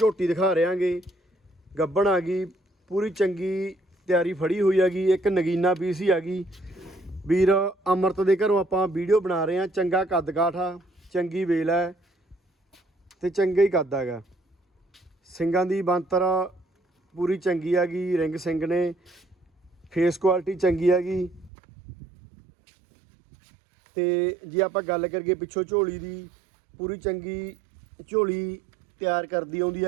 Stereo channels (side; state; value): left; drops out; at 21.5 s